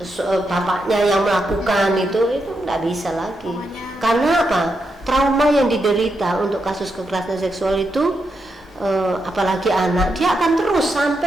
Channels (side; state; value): both; normal; correlation 0.83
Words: bapaknya yang melakukan itu nggak bisa lagi. Karena apa? Trauma yang diderita untuk kasus kekerasan seksual itu, apalagi anak, dia akan terus